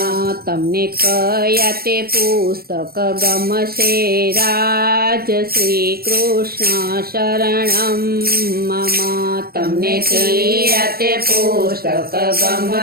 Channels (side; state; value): left; late; 0.44 ms